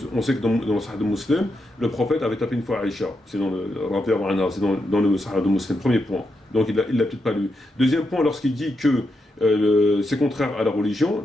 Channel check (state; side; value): normal; both; correlation 0.84